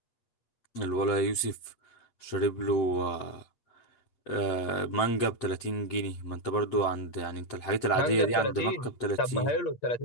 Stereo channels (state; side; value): late; right; 8.4 ms